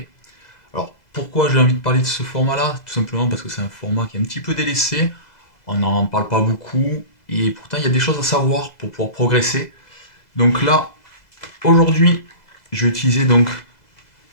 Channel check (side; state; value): right; late; 2.0 ms